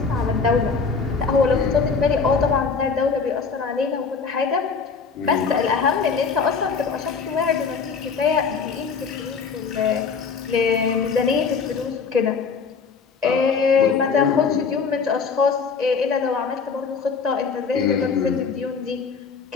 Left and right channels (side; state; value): right; quieter; 5.4 dB